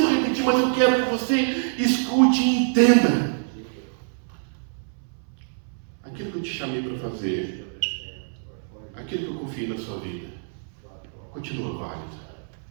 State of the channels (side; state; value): left; silent; 62 dB below the other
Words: repetir, mas eu quero que você escute e entenda. Aquilo que eu te chamei para fazer, aquilo que eu confiei na sua vida, continua válido.